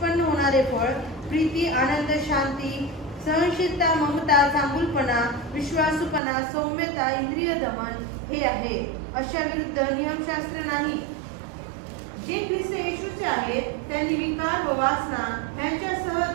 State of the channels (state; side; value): drops out; left; at 6.2 s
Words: होणारे फळ प्रीती, आनंद, शांती, सहनशीलता, ममता, चांगुलपणा, विश्वासूपणा, सौम्यता, इंद्रिय दमन हे आहे. अशा विरुद्ध नियमशास्त्र नाही. जे ख्रिस्त येशूचे आहेत त्यांनी विकार व वासना